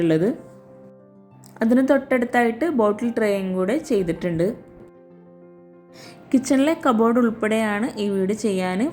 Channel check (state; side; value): identical; both; correlation 1.00